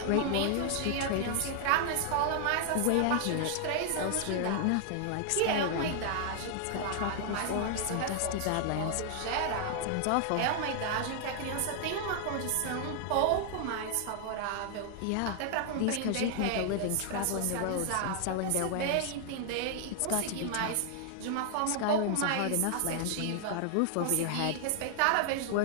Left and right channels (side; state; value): both; different; correlation 0.00